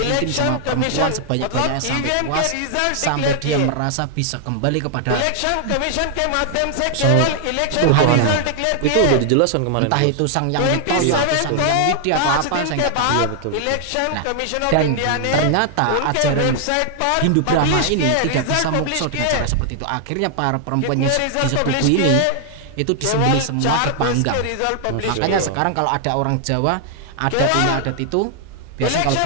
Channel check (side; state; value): both; different; correlation 0.00